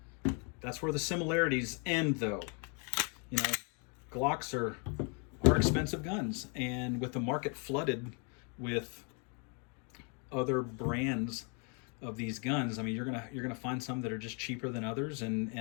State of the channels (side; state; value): right; quieter; 36.6 dB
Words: That's where the similarities end, though. You know, Glocks are expensive guns, and with the market flooded with other brands of these guns, I mean, you're gonna find some that are just cheaper than others,